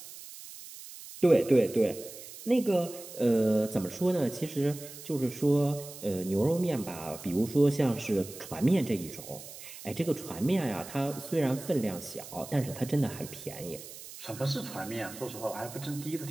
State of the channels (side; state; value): right; noise; hiss, 14 dB below the sound